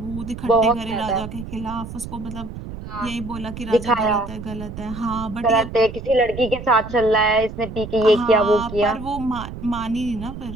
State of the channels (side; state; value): right; noise; rumble, 11 dB below the sound